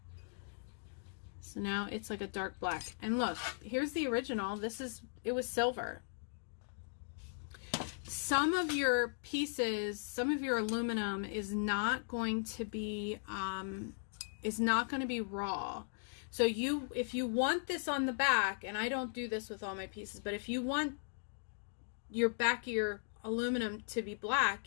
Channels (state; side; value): silent; right; digital silence